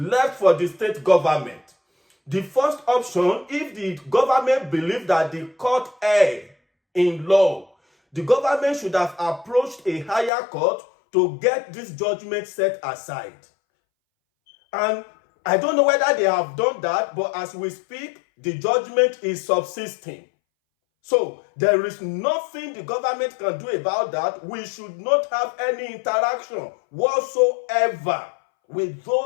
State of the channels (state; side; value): drops out; right; at 10.3 s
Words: for the state government. The first option, if the government believed that the court erred in law, the government should have approached a higher court to get this judgment set aside. And I don't know whether they have done that, but as we speak, the judgment is subsisting. So there is nothing the government can do about that. We should not have any interaction whatsoever with